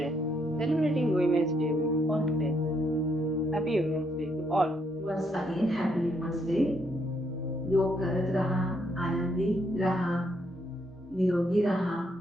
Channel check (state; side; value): normal; both; correlation 0.74